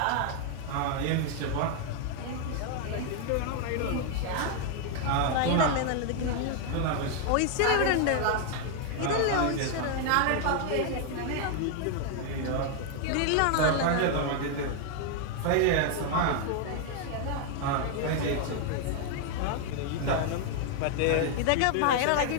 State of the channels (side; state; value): both; different; correlation 0.00